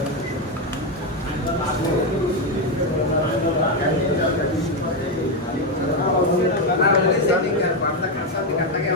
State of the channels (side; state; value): both; normal; correlation 0.07